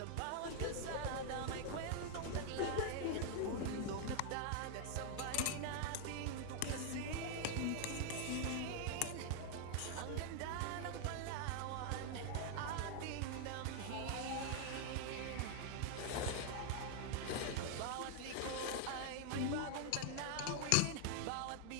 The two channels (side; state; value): both; different; correlation 0.00